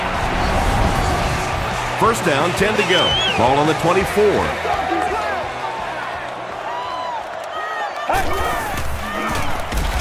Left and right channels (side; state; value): both; identical; correlation 1.00